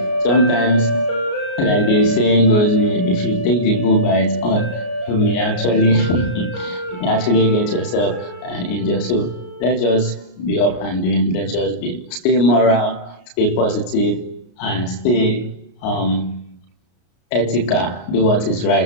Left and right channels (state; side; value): late; right; 33 ms